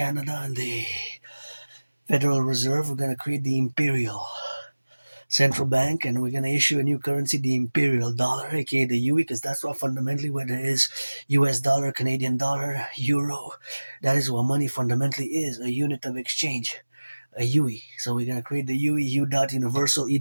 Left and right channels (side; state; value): both; inverted; correlation -1.00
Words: and the Federal Reserve. We're gonna create the Imperial Central Bank, and we're gonna issue a new currency, the Imperial Dollar, aka the UE, because that's what fundamentally what it is. US dollar, Canadian dollar, euro. That is what money fundamentally is, a unit of exchange, a UE. So we're gonna create the UE U dot universal E